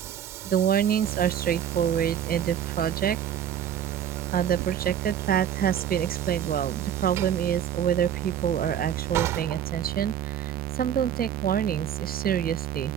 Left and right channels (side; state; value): left; quieter; 9.6 dB